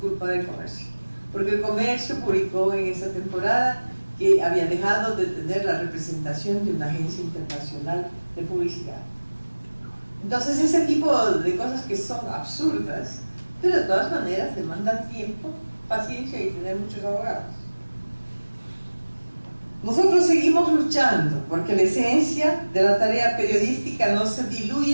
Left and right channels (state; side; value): inverted; both; correlation -1.00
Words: del comercio, porque el comercio publicó en esa temporada que había dejado de tener la representación de una agencia internacional de publicidad. Entonces ese tipo de cosas que son absurdas, pero de todas maneras demandan tiempo, paciencia y tener muchos abogados. Nosotros seguimos luchando porque la esencia de la tarea periodística no se